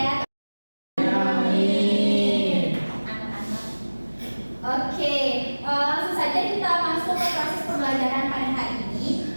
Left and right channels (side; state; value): both; inverted; correlation -1.00